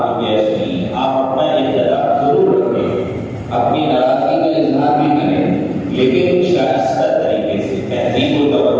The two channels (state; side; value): identical; both; correlation 1.00